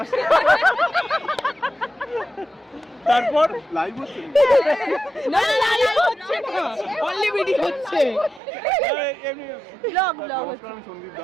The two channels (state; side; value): drops out; left; at 8.4 s